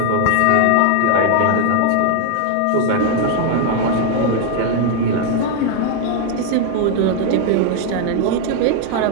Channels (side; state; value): both; different; correlation 0.00